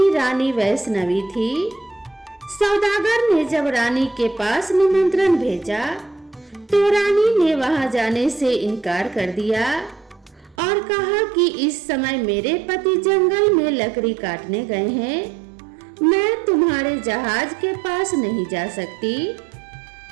रानी वैष्णवी थी। सौदागर ने जब रानी के पास निमंत्रण भेजा तो रानी ने वहां जाने से इनकार कर दिया और कहा कि इस समय मेरे पति जंगल में लकड़ी काटने गए हैं, मैं तुम्हारे जहाज के पास नहीं जा सकती।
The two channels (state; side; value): drops out; left; at 10.6 s